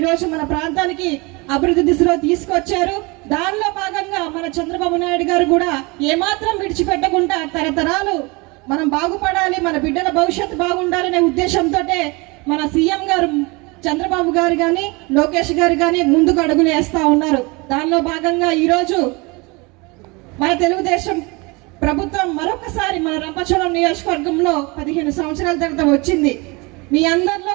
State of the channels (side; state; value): left; quieter; 26.5 dB